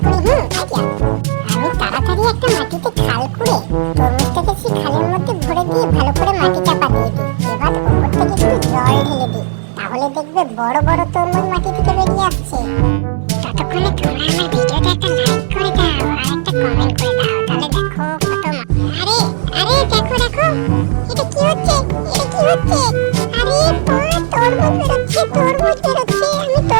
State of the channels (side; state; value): left; silent; digital silence